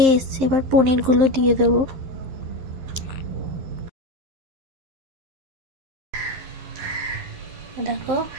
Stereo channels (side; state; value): left; late; 11 ms